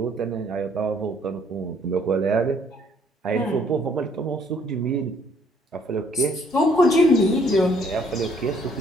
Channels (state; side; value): normal; both; correlation 0.64